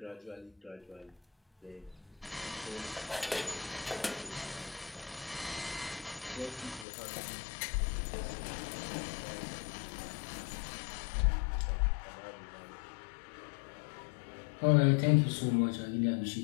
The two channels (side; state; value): right; drops out; at 6.9 s